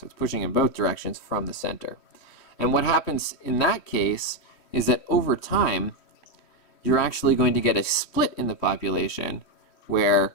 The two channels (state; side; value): late; right; 3.1 ms